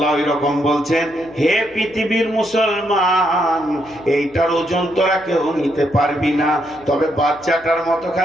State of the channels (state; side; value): noise; left; hum, 25 dB below the sound